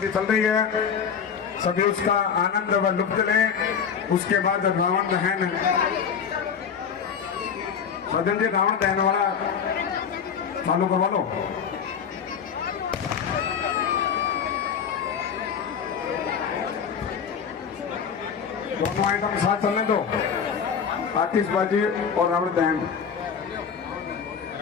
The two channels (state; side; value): quieter; right; 7.0 dB